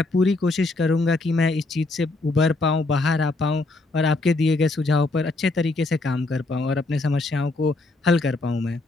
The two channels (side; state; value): right; quieter; 3.1 dB